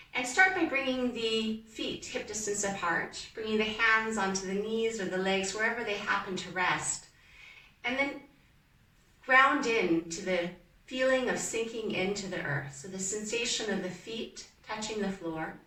and start by bringing the feet hip distance apart, bringing the hands onto the knees or the legs, wherever they happen to rest, and then ground in to the feeling of sinking into the earth. So the sensation of the feet touching the floor.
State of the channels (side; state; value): both; identical; correlation 1.00